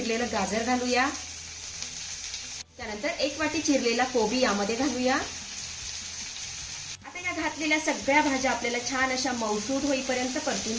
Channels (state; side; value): identical; both; correlation 1.00